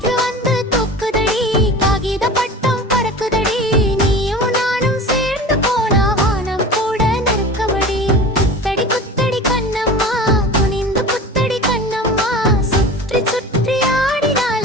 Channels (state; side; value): normal; both; correlation 0.35